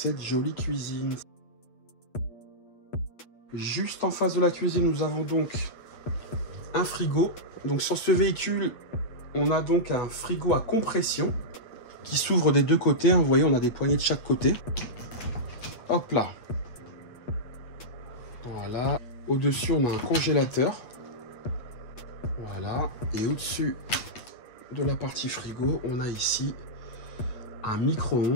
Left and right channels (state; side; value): late; right; 8.5 ms